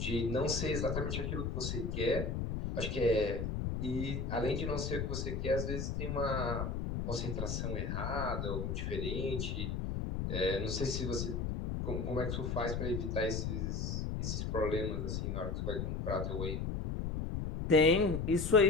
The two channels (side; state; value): left; noise; rumble, 2 dB below the sound